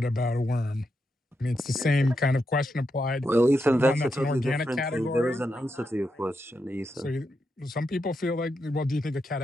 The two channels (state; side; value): normal; both; correlation 0.84